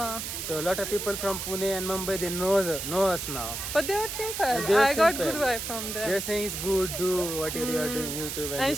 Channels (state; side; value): noise; right; hiss, 5 dB below the sound